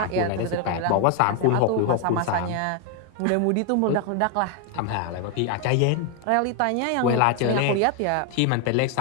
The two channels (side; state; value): both; different; correlation 0.01